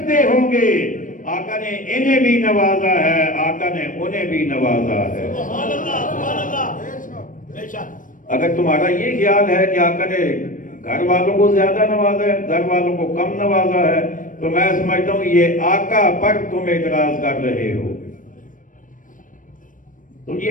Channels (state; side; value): late; right; 0.38 ms